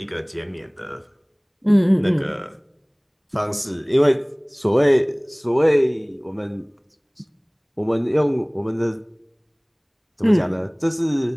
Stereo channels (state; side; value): identical; both; correlation 1.00